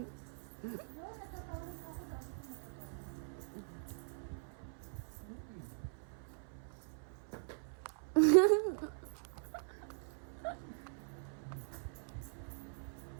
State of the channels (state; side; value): silent; left; 50 dB below the other